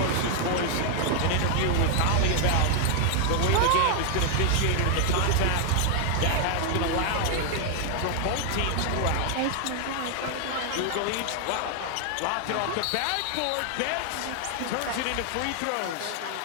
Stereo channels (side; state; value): both; different; correlation 0.00